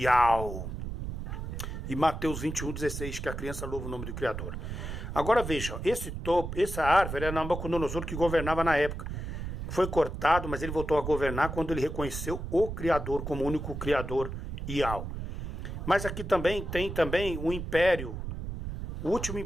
E Mateus 21:16, que a criança louva o nome do Criador. Agora vejam, essa árvore era Nabucodonosor que governava na época. Foi cortado, mas ele voltou a governar quando ele reconheceu o Criador como único Criador, Yahweh. Mas aqui também tem um império, o último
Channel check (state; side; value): noise; right; rumble, 6 dB below the sound